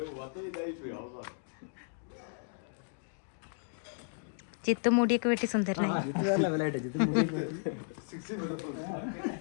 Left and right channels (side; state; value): right; silent; digital silence